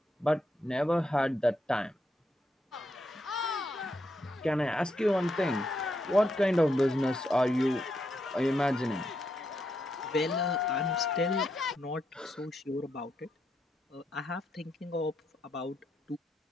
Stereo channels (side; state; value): both; normal; correlation 0.81